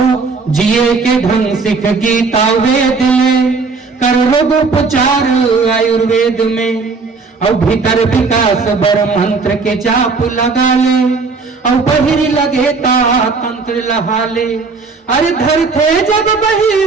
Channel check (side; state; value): left; quieter; 4.4 dB